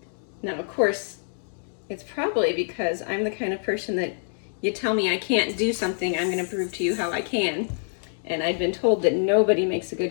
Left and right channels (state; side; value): silent; right; digital silence